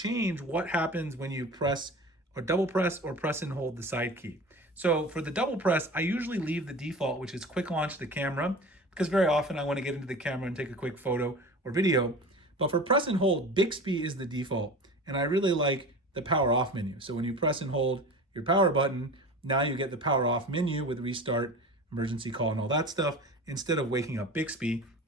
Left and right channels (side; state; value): both; normal; correlation 0.35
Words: what happens when you press or double press or press and hold the side key. So for the double press, I usually leave the default, which is quick launch the camera, because very often I want to get into the camera and take a quick photo or video. But for press and hold, Bixby is the default, and I really like the power off menu. So when you press and hold your power button, now you get the power off menu with restart, emergency call, and all that stuff, instead of waking up Bixby,